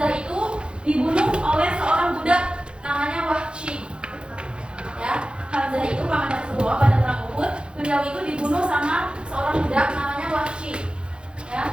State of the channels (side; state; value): left; late; 0.054 ms